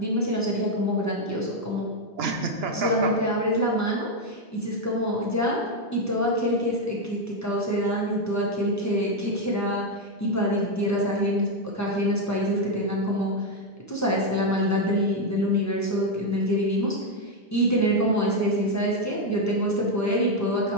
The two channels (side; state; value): both; normal; correlation 0.03